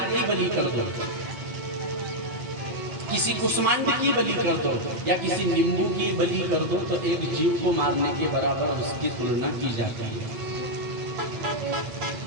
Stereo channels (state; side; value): late; left; 9.0 ms